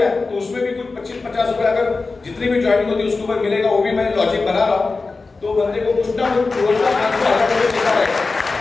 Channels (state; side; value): quieter; right; 3.9 dB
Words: तो उसमें भी कुछ 25-50 रुपए अगर जितनी भी ज्वाइनिंग होती है उसके ऊपर मिलेगा। वो भी मैं लॉजिक बना रहा हूँ, तो बंदे को कुछ ना कुछ रोज का 500-1000 रुपए मिलता रहेगा।